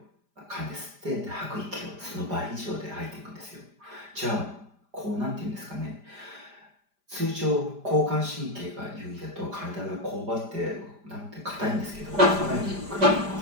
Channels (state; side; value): late; left; 5.0 ms